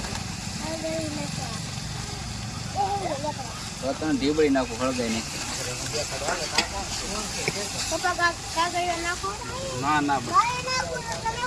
તને ઢીબળી નાખું, હળગાઈ નહીં. ના ના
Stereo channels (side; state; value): both; identical; correlation 1.00